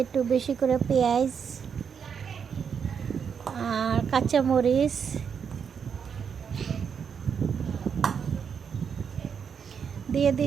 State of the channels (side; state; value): left; quieter; 6.9 dB